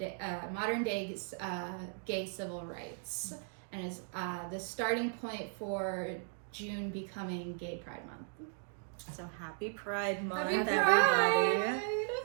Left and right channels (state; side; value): silent; left; 53 dB below the other